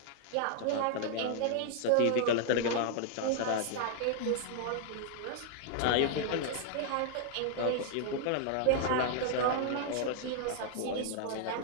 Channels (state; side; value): different; both; correlation -0.01